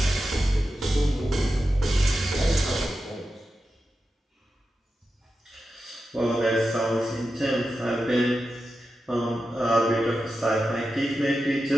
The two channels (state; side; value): normal; both; correlation 0.91